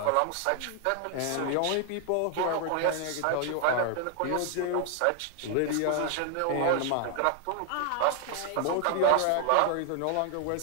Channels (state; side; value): different; both; correlation 0.00